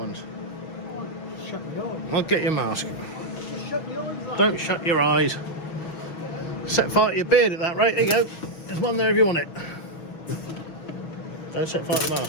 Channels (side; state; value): right; late; 6.3 ms